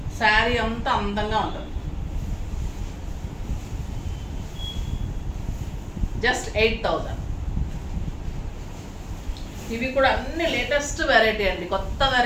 శారీ అంతా అందంగా ఉంటుంది. జస్ట్ 8,000. ఇవి కూడా అన్ని లేటెస్ట్ వెరైటీ అండి, కొత్త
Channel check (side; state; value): both; identical; correlation 1.00